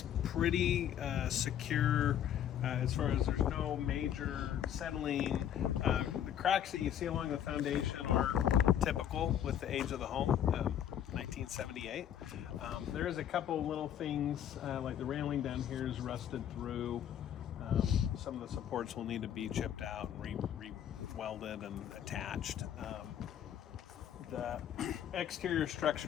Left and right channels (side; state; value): right; quieter; 10.0 dB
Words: pretty secure as far as there's no major settling. The cracks that you see along the foundation are typical with the age of the home, 1978. There is a couple little things like the railing down here is rusted through. Some of the supports will need to be chipped out and re-welded and attached. The exterior